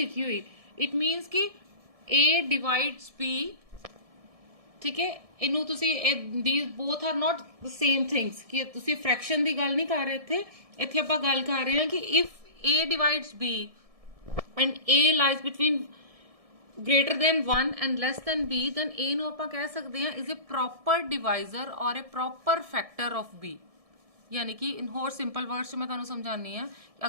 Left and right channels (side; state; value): left; late; 1.7 ms